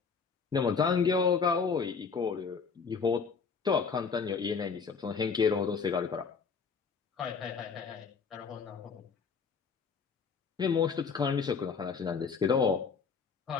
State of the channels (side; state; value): right; quieter; 5.6 dB